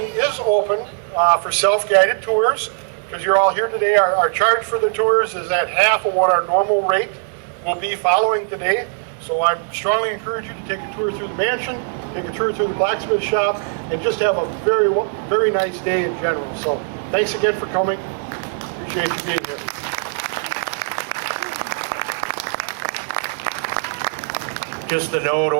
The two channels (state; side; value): silent; left; digital silence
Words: is open for self-guided tours. Because you're all here today, our charge for the tours is at half of what our normal rate will be following today. So I strongly encourage you to take a tour through the mansion, take a tour through the blacksmith shop, and just have a very, very nice day in general. So thanks again for coming. Appreciate you being here. Just a note,